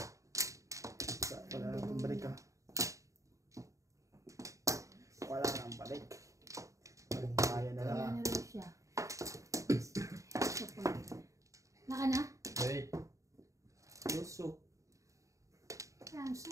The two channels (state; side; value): late; left; 0.16 ms